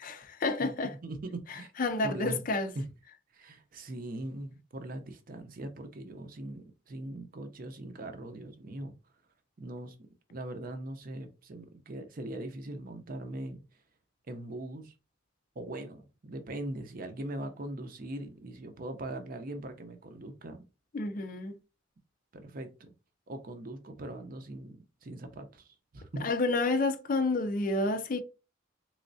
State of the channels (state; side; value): normal; both; correlation 0.34